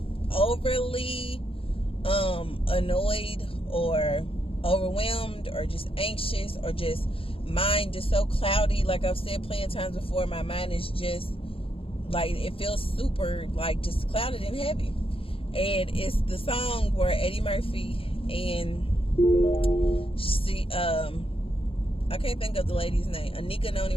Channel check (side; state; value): right; late; 0.27 ms